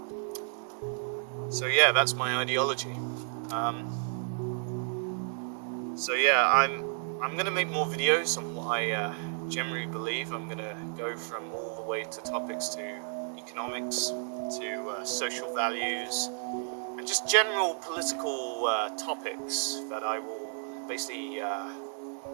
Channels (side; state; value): left; silent; digital silence